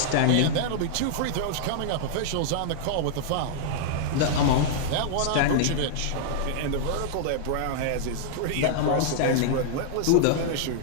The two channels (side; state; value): both; different; correlation -0.01